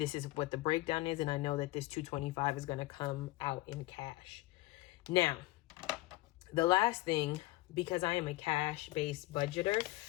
is what the breakdown is. And I know that this 225 is going to come out in cash. Now, the last thing, because I am a cash-based budgeter,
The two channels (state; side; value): quieter; right; 19.1 dB